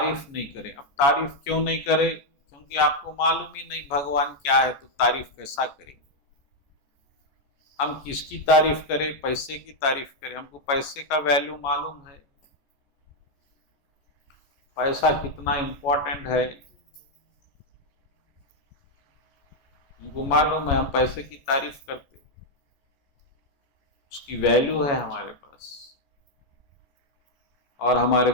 नहीं करें। अब तारीफ क्यों नहीं करें? क्योंकि आपको मालूम ही नहीं भगवान क्या है, तो तारीफ कैसा करेंगे? हम किसकी तारीफ करें? पैसे की तारीफ करें? हमको पैसे का वैल्यू मालूम है, पैसा कितना इंपॉर्टेंट है हमको मालूम है। हम पैसे की तारीफ करते, उसकी वैल्यू है हमारे पास, और हमारे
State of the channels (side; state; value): right; late; 14 ms